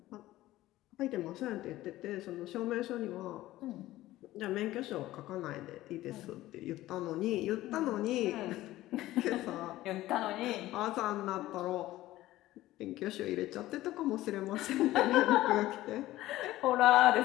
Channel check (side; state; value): right; quieter; 16.0 dB